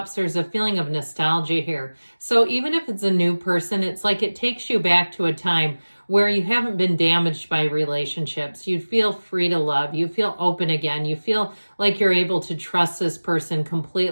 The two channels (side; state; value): both; inverted; correlation -1.00